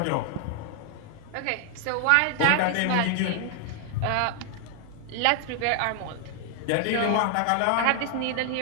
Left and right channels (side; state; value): both; different; correlation 0.00